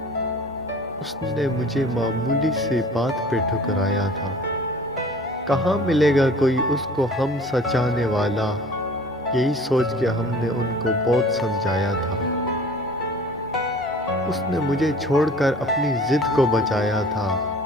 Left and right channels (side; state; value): both; normal; correlation 0.46